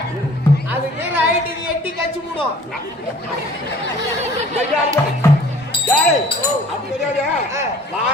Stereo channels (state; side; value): normal; both; correlation 0.51